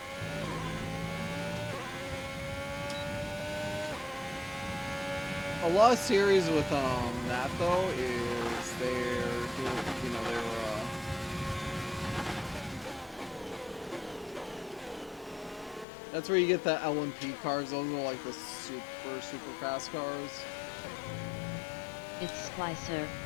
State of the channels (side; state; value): right; drops out; at 15.9 s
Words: A lot of series with that though is they're doing, you know, they're that's where you get the LMP cars. Those are like the super fast cars. It's Splicer